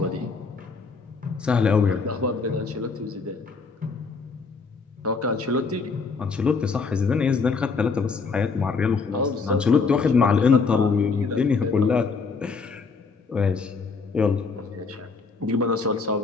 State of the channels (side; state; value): right; quieter; 4.7 dB